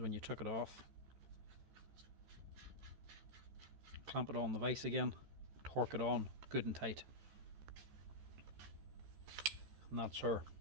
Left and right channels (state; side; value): late; left; 13 ms